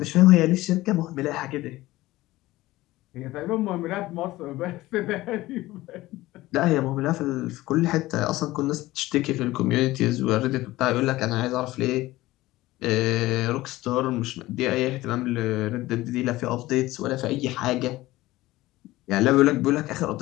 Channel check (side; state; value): right; quieter; 17.7 dB